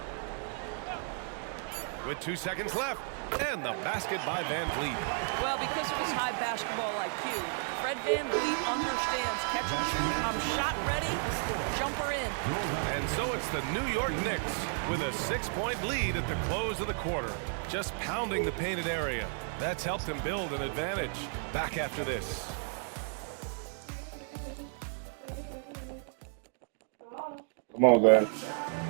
With 2 seconds left. And the basket by Van Vliet. Well, because of his high basketball IQ, Fred Van Vliet understands catch and shoot. I'm shot ready, jumper in. And so it's the New York Knicks with a 6-point lead at the close of the quarter. Just pounding the painted area. That's helped them build an advantage. Back after this. Come on, guys.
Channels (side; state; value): left; silent; 56 dB below the other